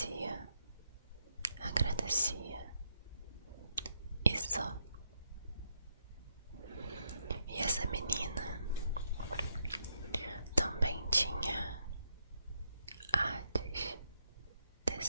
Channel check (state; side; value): inverted; both; correlation -0.79